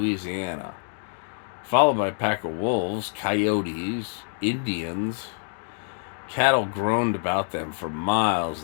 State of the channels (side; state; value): right; silent; 61 dB below the other